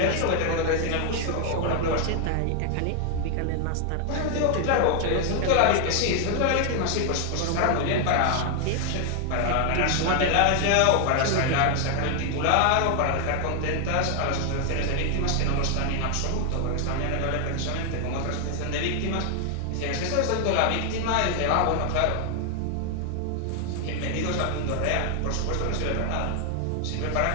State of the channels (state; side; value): different; both; correlation 0.00